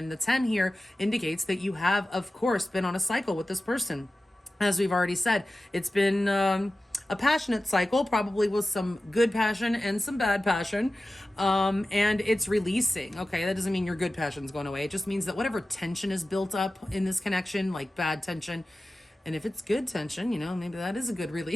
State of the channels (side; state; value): both; normal; correlation 0.95